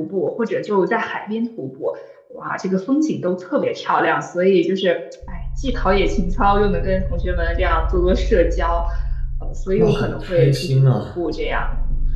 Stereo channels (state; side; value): identical; both; correlation 1.00